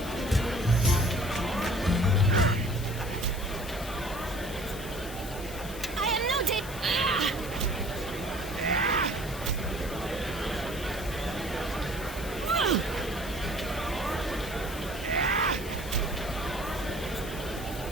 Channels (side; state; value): left; noise; hiss, 14 dB below the sound